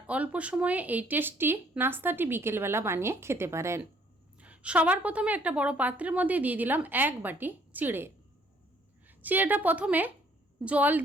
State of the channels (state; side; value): normal; both; correlation 0.62